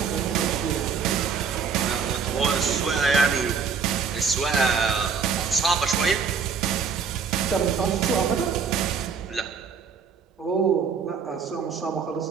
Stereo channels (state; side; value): quieter; left; 6.0 dB